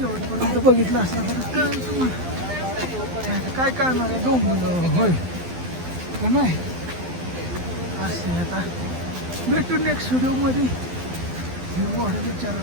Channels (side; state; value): left; late; 12 ms